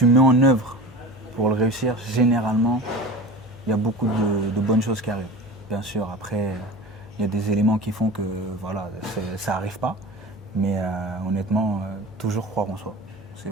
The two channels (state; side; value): normal; both; correlation 0.35